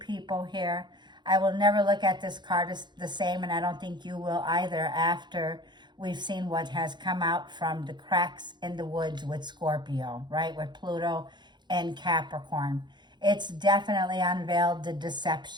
here. I will never look at this card as the same, and I don't think you will either after we've seen what has come out from the cracks in the woods with Scorpio, right? With Pluto and Capricorn. It's definitely unveiled the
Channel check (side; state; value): left; late; 0.21 ms